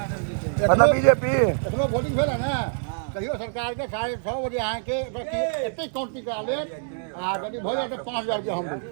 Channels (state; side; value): silent; left; 61 dB below the other